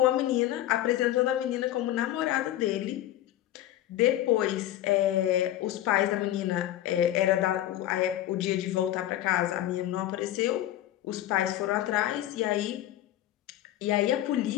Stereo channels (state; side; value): quieter; right; 13.3 dB